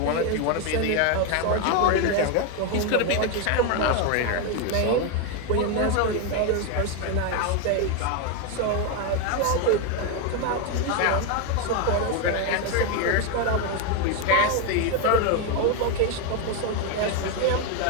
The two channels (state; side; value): different; both; correlation 0.02